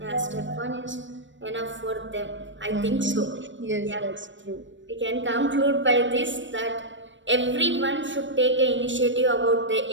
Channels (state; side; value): late; left; 0.54 ms